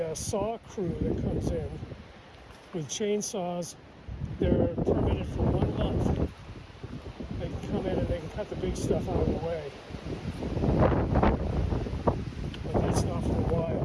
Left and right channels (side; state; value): both; identical; correlation 1.00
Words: saw crew that comes in with chainsaws. They're permitted for 1 month. They can come in and they can cut the big stuff out of the way. But that's not for a